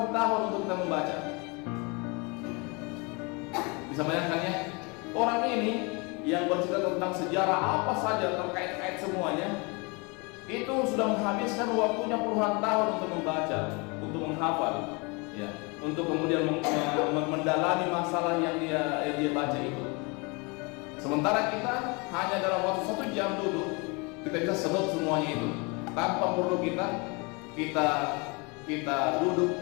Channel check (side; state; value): right; quieter; 29.6 dB